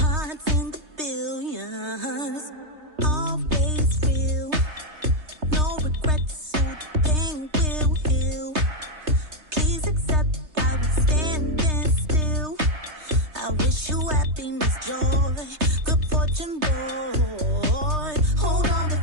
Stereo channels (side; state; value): left; late; 3.3 ms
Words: in the billions. Always real. No regrets, so the pain will heal. Please accept I was standing still. I wish you happiness, joy, good fortune, boy. Hold on